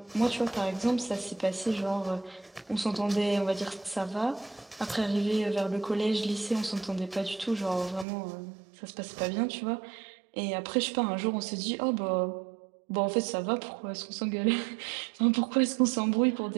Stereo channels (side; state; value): left; drops out; at 8.1 s